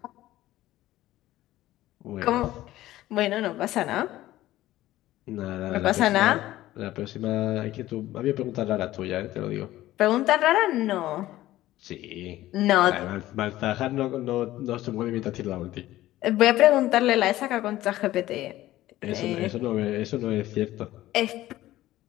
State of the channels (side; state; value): right; quieter; 15.4 dB